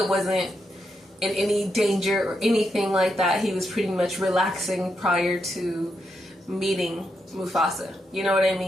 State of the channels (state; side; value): normal; both; correlation 0.83